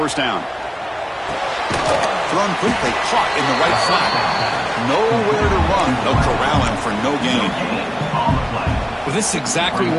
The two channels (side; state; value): both; identical; correlation 1.00